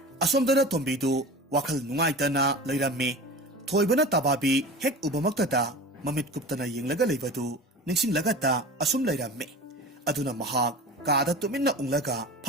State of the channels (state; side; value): normal; both; correlation 0.34